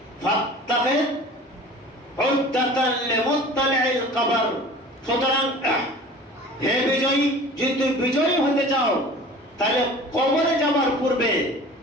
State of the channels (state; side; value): normal; both; correlation 0.42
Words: ফাত্তাখিদ উদ্দাতান লিমুত্তালি'ল কবর। সুতরাং হে বিজয়ী, যদি তুমি বিজয়ী হতে চাও, তাহলে কবরে যাবার পূর্বে